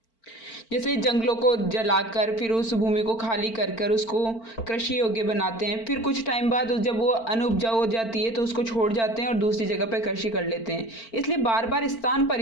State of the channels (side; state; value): right; late; 4.4 ms